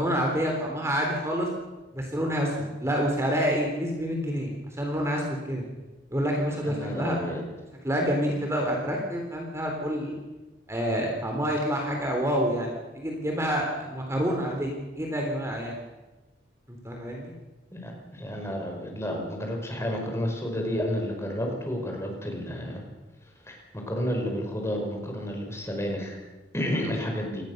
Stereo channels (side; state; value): both; normal; correlation 0.55